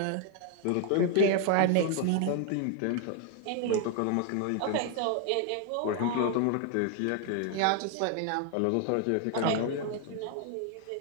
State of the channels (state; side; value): different; both; correlation 0.00